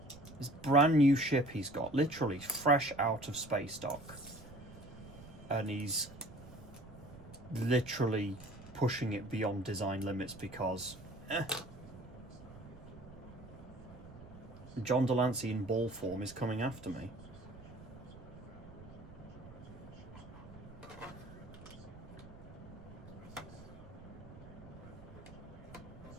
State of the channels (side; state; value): right; noise; rumble, 17 dB below the sound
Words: This brand new ship he's got, literally fresh out of space dock. And he's literally pushing it beyond design limits because John Delancey in ball form is coming after me.